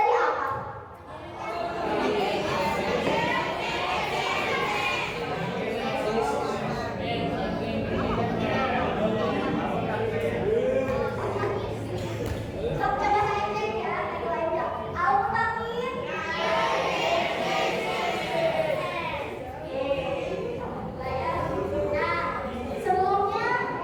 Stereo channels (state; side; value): identical; both; correlation 1.00